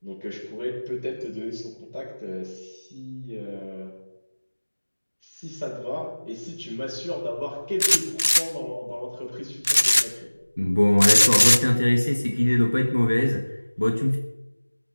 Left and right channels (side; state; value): both; inverted; correlation -1.00